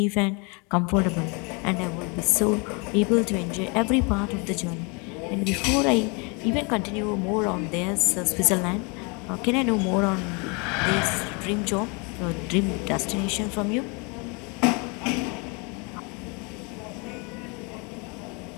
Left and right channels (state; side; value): quieter; right; 31.7 dB